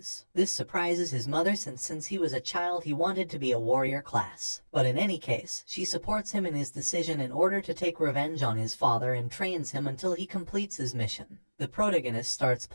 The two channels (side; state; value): both; inverted; correlation -1.00